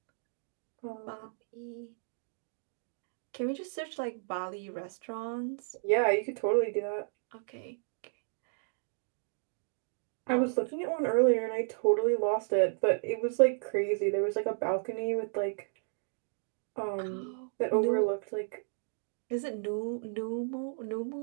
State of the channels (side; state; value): left; silent; digital silence